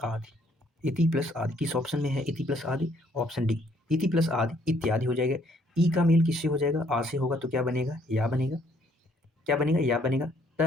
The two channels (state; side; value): normal; both; correlation 0.65